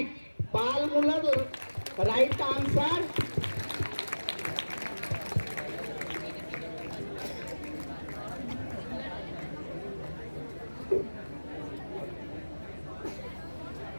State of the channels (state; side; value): inverted; both; correlation -1.00